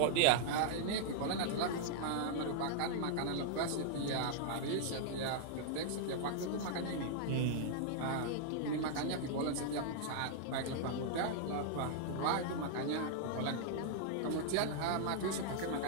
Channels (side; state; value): both; different; correlation -0.01